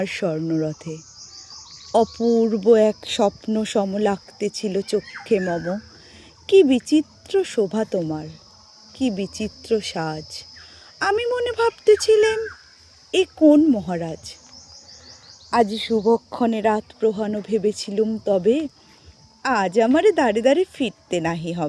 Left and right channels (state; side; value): identical; both; correlation 1.00